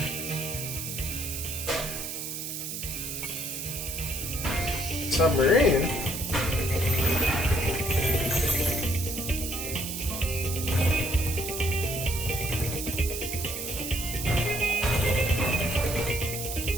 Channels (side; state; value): right; noise; hiss, 5 dB below the sound